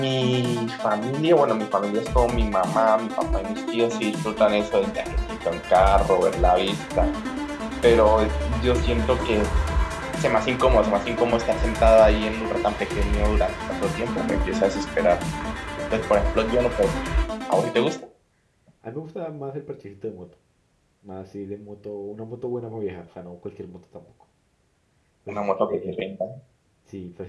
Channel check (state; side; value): identical; both; correlation 1.00